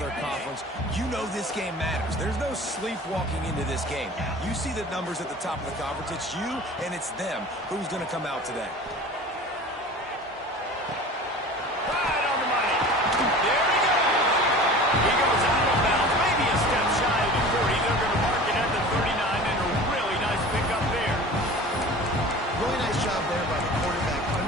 conference. You know this game matters. There's no sleepwalking into this game. You see the numbers at the top of the conference. It's you and it's them. Who's going to come out today? Right on the money. There he goes. He goes out of bounds, maybe a step shy of the 40. They're going to mark it at the 39, and a really nice pickup there. Really nice job there by the quarterback,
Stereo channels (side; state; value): both; normal; correlation 0.40